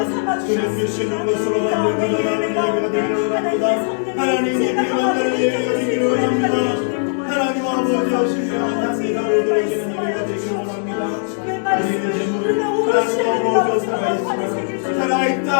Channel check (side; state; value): right; silent; digital silence